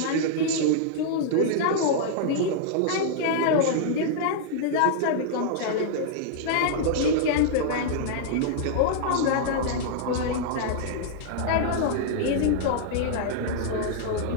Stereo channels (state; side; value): different; both; correlation -0.01